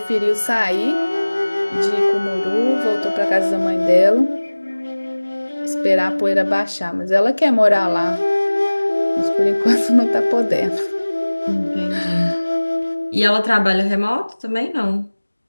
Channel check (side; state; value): both; inverted; correlation -1.00